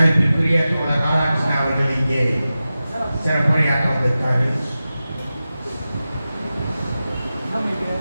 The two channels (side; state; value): both; inverted; correlation -0.94